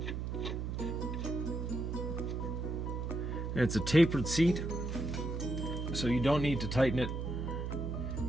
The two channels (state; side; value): noise; right; hum, 3 dB below the sound